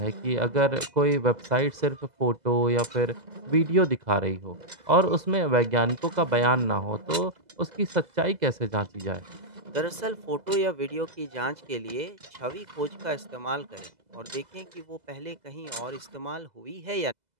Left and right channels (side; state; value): left; late; 2.0 ms